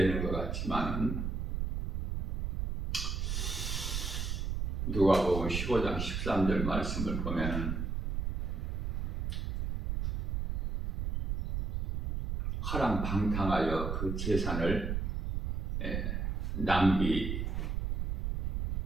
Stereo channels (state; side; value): noise; right; rumble, 1 dB below the sound